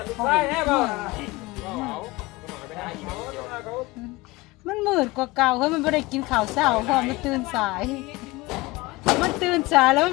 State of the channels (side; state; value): right; quieter; 21.4 dB